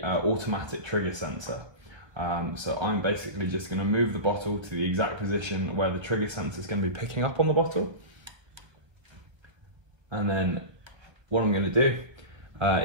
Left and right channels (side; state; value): left; late; 1.5 ms